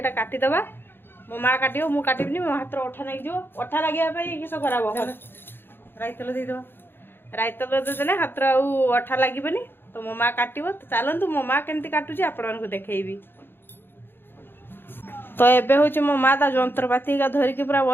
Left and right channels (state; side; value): late; right; 0.10 ms